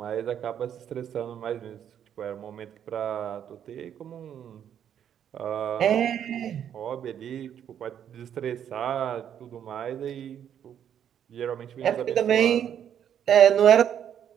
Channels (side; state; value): left; quieter; 9.3 dB